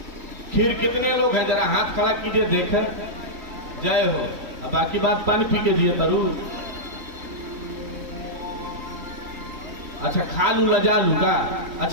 खीर कितने लोग हैं? जरा हाथ खड़ा कीजिए देखे। जय हो। अब बाकी बात पानी पी के जिए तरु। अच्छा खा लू लजा लू का?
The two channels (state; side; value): late; left; 3.2 ms